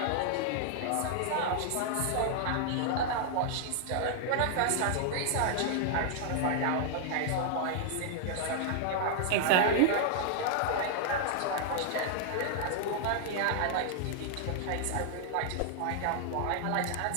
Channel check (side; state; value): both; different; correlation -0.01